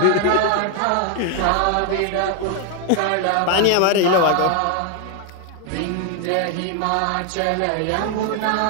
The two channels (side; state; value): both; different; correlation 0.00